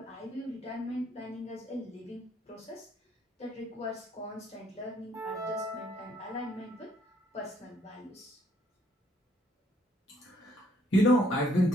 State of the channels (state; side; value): normal; both; correlation 0.66